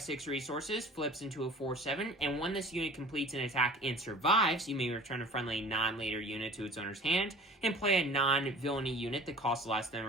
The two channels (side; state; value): both; normal; correlation 0.45